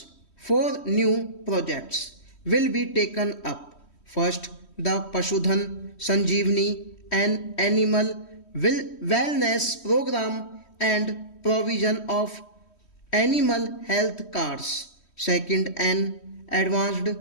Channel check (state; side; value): late; right; 3.1 ms